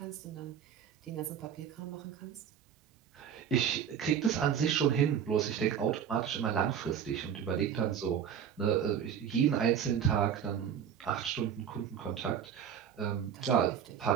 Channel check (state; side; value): quieter; left; 8.5 dB